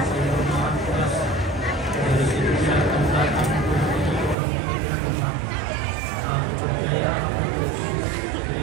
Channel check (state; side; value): drops out; left; at 4.4 s